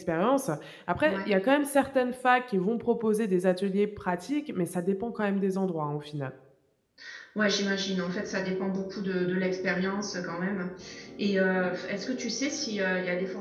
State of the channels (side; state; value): both; identical; correlation 1.00